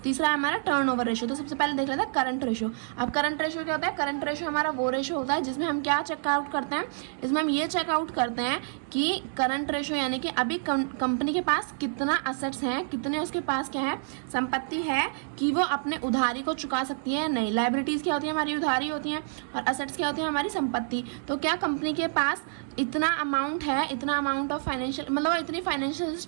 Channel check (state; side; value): silent; left; digital silence